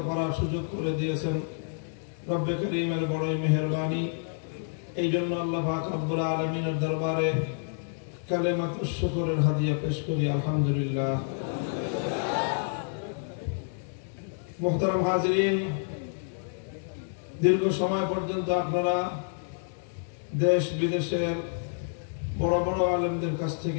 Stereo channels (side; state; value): right; silent; 59 dB below the other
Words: করার সুযোগ করে দিয়েছেন। রব্বে করিমের বড়ই মেহেরবানি। এই জন্য আল্লাহ পাক রব্বুল আলামিনের দরবারে কালেমাতুশ শুকরের হাদিয়া পেশ করি, আলহামদুলিল্লাহ। মুহতারাম হাজিরিন, দীর্ঘ সময় পর্যন্ত আপনারা দেশ বিদেশের বড় বড় আলেমদের কাছ